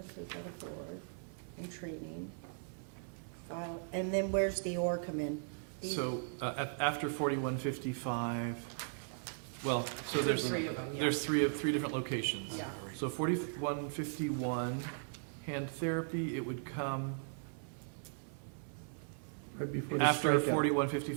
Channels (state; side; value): silent; left; 53 dB below the other